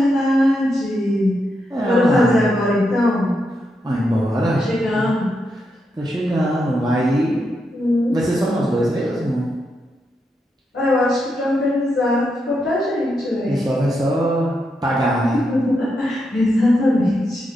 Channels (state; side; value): normal; both; correlation 0.83